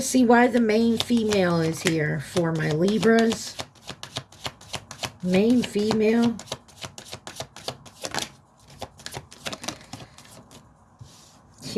see why the main female is here for my Libras. Main female.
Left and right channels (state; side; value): identical; both; correlation 1.00